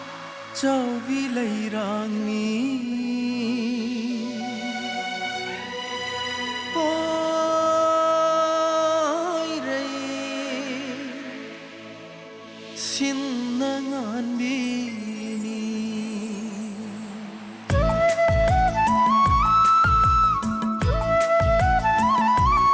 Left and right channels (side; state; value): both; identical; correlation 1.00